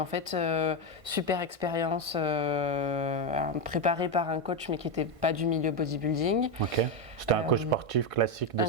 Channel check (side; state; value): left; late; 1.5 ms